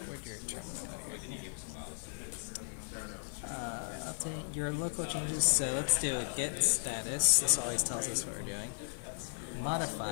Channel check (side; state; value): right; silent; digital silence